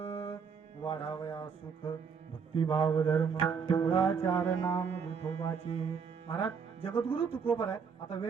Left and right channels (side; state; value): left; quieter; 6.1 dB